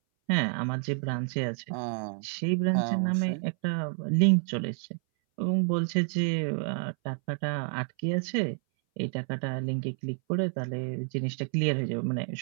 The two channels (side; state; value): left; silent; 58 dB below the other